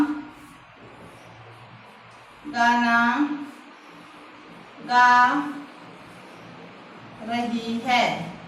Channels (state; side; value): identical; both; correlation 1.00